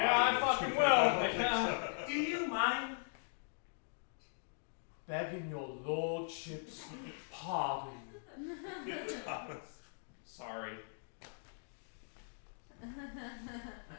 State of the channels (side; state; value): right; silent; digital silence